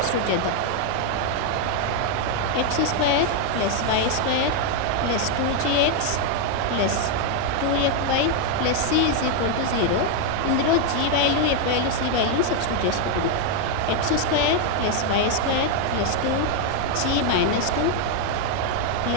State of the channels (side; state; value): both; different; correlation 0.01